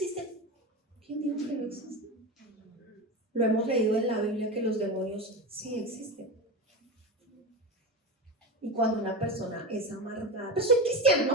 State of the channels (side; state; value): both; normal; correlation 0.21